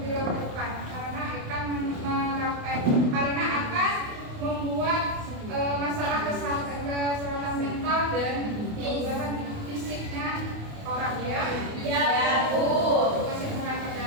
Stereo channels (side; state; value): left; late; 28 ms